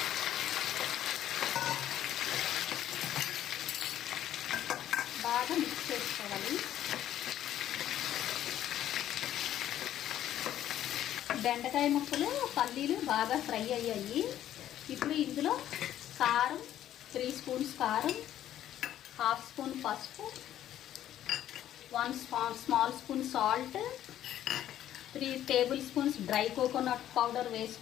బాగా మిక్స్ చేసుకోవాలి. బెండకాయ ముక్కలు పల్లీలు బాగా ఫ్రై అయ్యాయి. ఇప్పుడు ఇందులో కారం 3 స్పూన్స్ కారం, 1/2 స్పూన్ పసుపు, 1 small spoon salt, 3 table spoons dry coconut powder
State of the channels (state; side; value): quieter; right; 11.8 dB